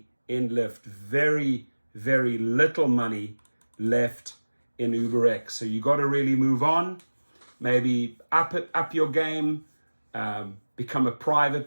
in Lyft. Very, very little money left in UberX. So you got to really move on. Maybe up your game, become a private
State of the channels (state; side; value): inverted; both; correlation -1.00